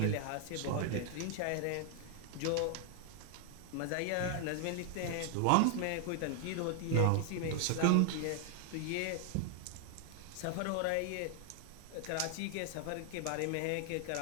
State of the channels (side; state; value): both; different; correlation 0.00